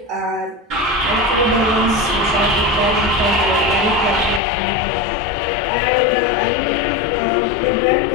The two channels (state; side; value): drops out; right; at 4.4 s